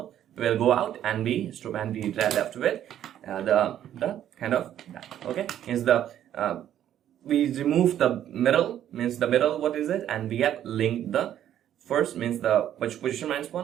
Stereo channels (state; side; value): quieter; left; 11.0 dB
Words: will go out, and we left with the kind of that. Okay, is the we remove the middle, means the middle, what is it, and we have linked the first, means the position minus